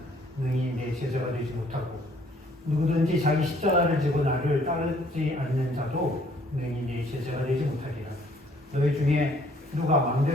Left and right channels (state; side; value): normal; both; correlation 0.61